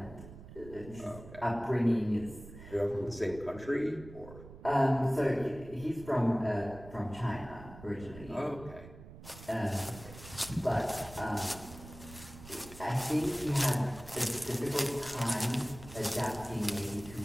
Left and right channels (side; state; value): right; noise; rumble, 16 dB below the sound